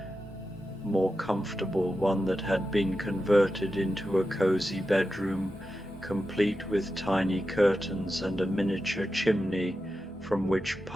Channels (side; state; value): both; normal; correlation 0.90